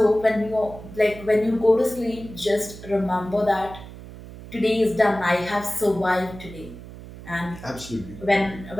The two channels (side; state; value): right; noise; hum, 15 dB below the sound